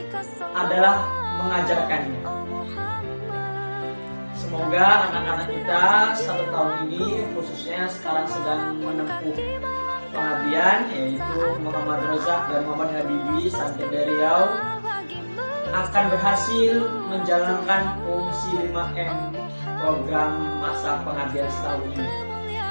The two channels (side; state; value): both; inverted; correlation -1.00